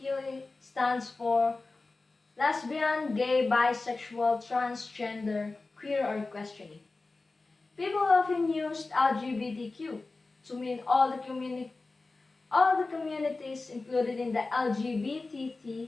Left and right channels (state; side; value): quieter; right; 3.5 dB